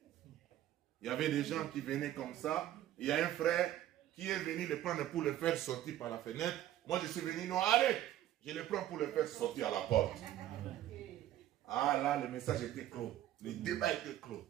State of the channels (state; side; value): quieter; left; 12.9 dB